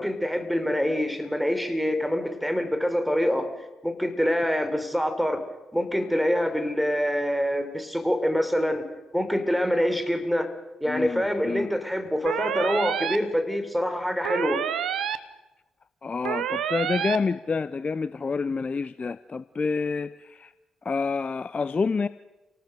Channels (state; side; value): normal; both; correlation 0.90